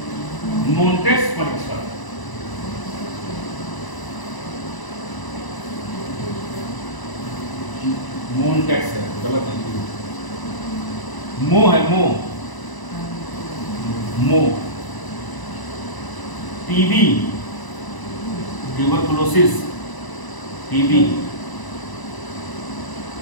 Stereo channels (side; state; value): right; late; 1.0 ms